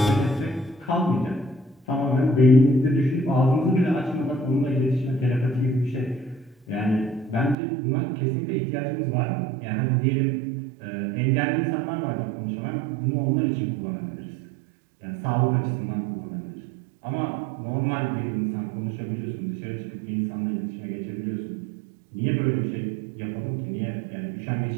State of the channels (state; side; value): drops out; left; at 7.6 s